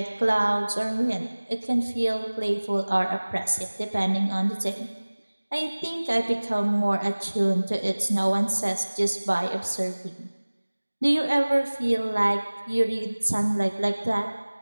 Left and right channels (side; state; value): both; inverted; correlation -1.00